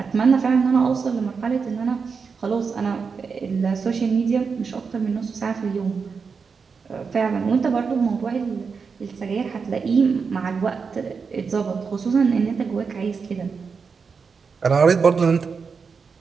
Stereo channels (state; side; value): quieter; left; 5.4 dB